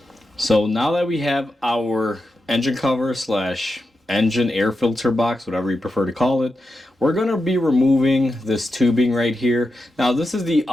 So now that we have our engine cover slash engine air filter box, whatever you prefer to call it, we're going to be removing this tubing right here. Now this is the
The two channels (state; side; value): normal; both; correlation 0.88